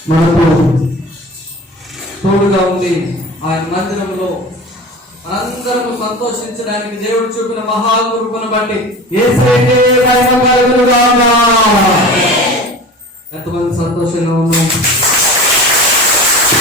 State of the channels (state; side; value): normal; both; correlation 0.35